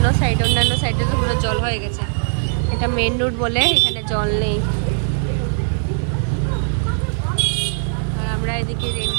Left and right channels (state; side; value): silent; left; digital silence